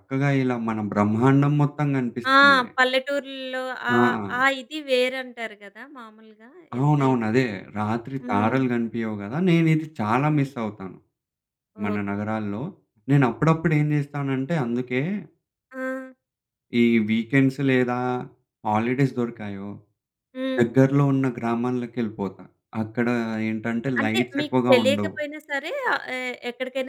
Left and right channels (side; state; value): both; identical; correlation 1.00